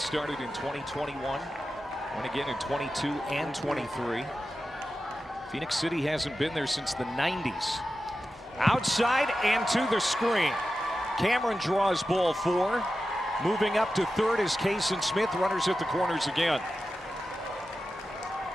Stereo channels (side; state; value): both; normal; correlation 0.92